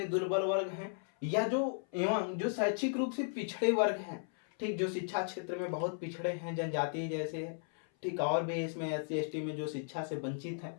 दुर्बल वर्ग हैं, या जो शैक्षिक रूप से पिछड़े वर्ग हैं, ठीक, जो शिक्षा क्षेत्र में बहुत पिछड़े हैं, जनजाति जैसे है, ठीक, और भी इसमें एससी एसटी में जो शिक्षा से वंचित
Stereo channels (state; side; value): silent; right; 54 dB below the other